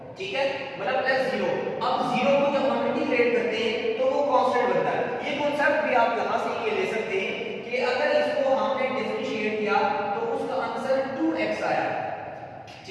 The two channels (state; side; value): identical; both; correlation 1.00